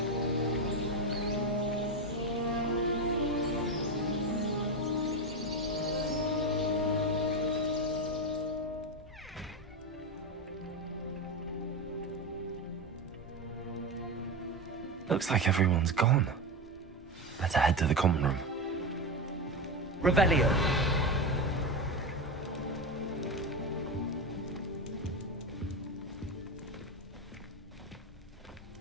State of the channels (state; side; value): normal; both; correlation 0.16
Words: Looks like everyone's gone. Better head to the common room. Revelio.